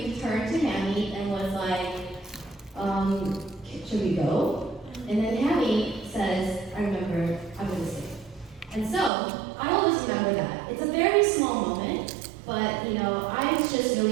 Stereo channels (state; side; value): drops out; left; at 9.1 s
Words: turned to Hammy and was like, should we go? And then Hammy says, I'm going to stay. And so, I always remember that. It's a very small moment, but, I was just